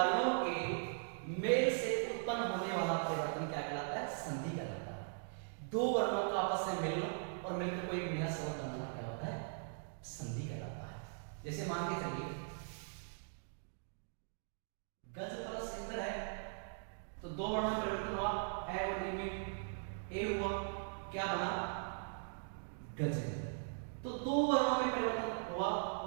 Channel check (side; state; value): left; silent; digital silence